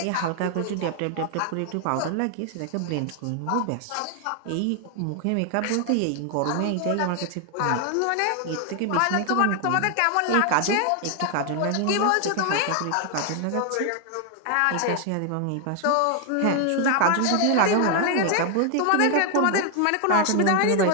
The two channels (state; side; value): different; both; correlation 0.00